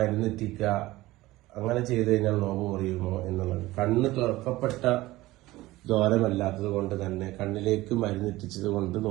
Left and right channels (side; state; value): left; quieter; 18.1 dB